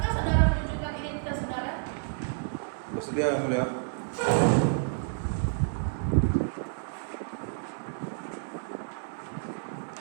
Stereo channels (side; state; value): left; silent; digital silence